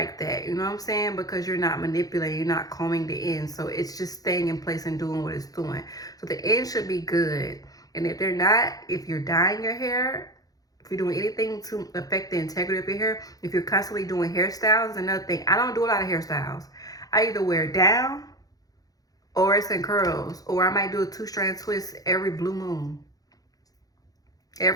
that. You know what I'm saying? Because you're not manipulating, you're not combing the ends. So it's just staying in place and doing what it's doing. So the ends should be good. And if they're not, if you're dyeing your hair, if you're doing anything to affect the integrity of your hair, if you're constantly doing hairstyles, another thing. I don't do a lot of hairstyles. I either wear it down, or it's in curls, or I might do a 2-strand twist every blue moon.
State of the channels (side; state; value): right; late; 0.18 ms